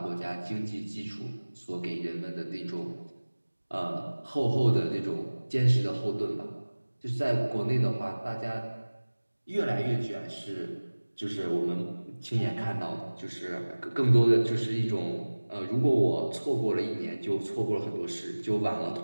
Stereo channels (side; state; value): both; inverted; correlation -1.00